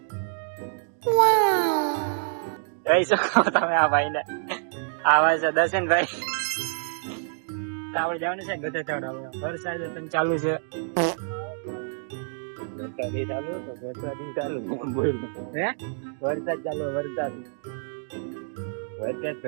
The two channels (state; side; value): silent; left; digital silence